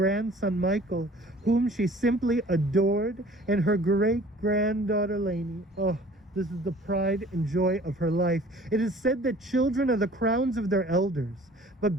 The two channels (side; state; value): both; normal; correlation 0.50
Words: Michael, whom she simply adored, and her great-granddaughter Lainey. Oh, this is the pride and joy of her life. It is said that children are the crowns of their elders, but